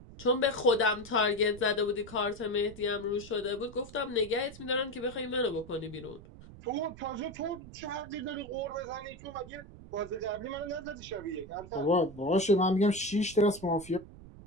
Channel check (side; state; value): right; noise; rumble, 17 dB below the sound